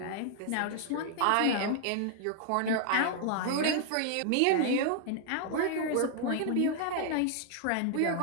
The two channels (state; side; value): different; both; correlation 0.00